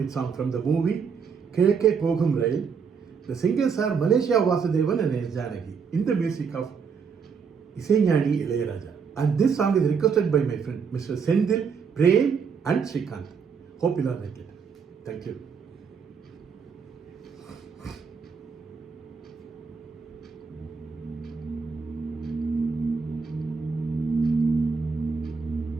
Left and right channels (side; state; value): left; quieter; 6.0 dB